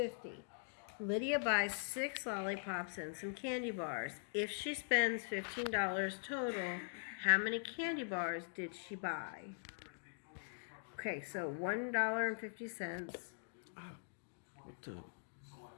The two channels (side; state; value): right; silent; digital silence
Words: Lydia buys 6 lollipops and some candy bars. If she spends $15 total, how many candy bars did she buy? Okay, so $1.50. What the?